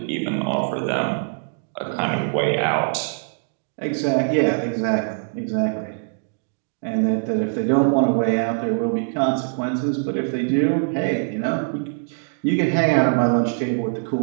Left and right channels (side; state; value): left; silent; digital silence